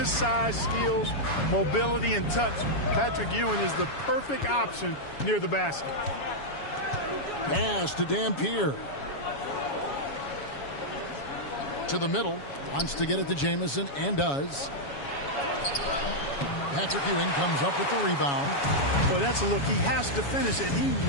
size, skills, mobility, and touch, Patrick Ewing is the perfect option near the basket. Pass to Dampier. To the middle. Wants to get it to Jamison and does. Patrick Ewing comes up with the rebound. Boy, that's a look. He has to finish it. He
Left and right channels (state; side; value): late; right; 7.1 ms